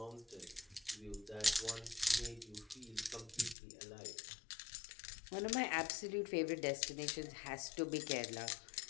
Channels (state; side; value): drops out; right; at 3.6 s